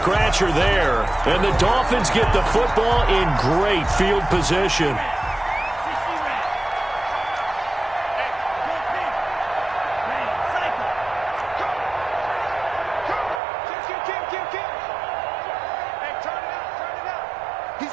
there. And the Dolphins get the football in great field position.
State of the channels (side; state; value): left; drops out; at 13.4 s